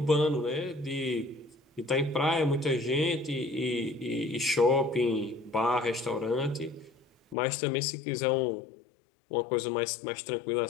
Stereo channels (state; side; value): drops out; right; at 7.4 s